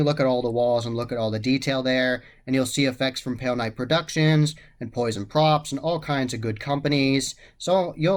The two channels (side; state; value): both; identical; correlation 1.00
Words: look at all the walls and look at all the detail there, and you'll see effects from Pale Knight Productions and Poison Props and all kinds of good companies. So